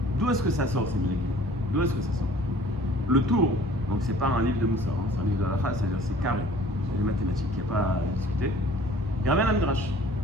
D'où est-ce que ça sort ces minagim? D'où est-ce que ça sort? Le tour, donc c'est pas un livre de Moussa, hein, c'est un livre de Halacha, c'est-à-dire c'est carré, c'est des mathématiques, il n'y a pas à discuter. Il ramène un midrash.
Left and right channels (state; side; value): normal; both; correlation 0.51